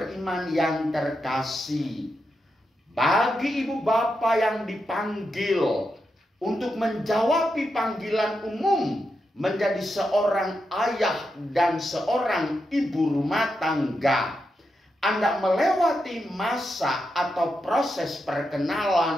yang terkasih, bagi ibu bapa yang dipanggil untuk menjawabi panggilan umum menjadi seorang ayah dan seorang ibu rumah tangga, Anda melewati masa atau proses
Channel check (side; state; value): both; normal; correlation 0.86